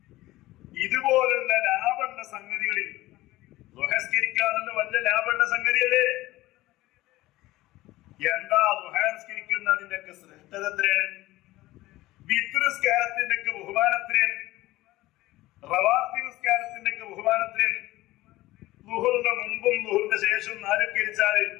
ഇതുപോലുള്ള ലാഭമുള്ള സംഗതികളിൽ ദുഹസ്കരിക്കാനുള്ള വലിയ ലാഭമുള്ള സംഗതിയല്ലേ? എന്താ ദുഹസ്കരിക്കുന്നതിന്റെ ഒക്കെ ശ്രേഷ്ഠത എത്രയാണ്? വിത്രിസ്കാരത്തിന്റെ ഒക്കെ ബഹുമാനം എത്രയാണ്? റവാത്തിബ് നിസ്കാരത്തിന്റെ ഒക്കെ ബഹുമാനം എത്രയാണ്? ളുഹറിന്റെ മുമ്പും ളുഹറിന്റെ ശേഷവും 4 കരിച്ചാൽ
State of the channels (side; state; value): right; quieter; 17.7 dB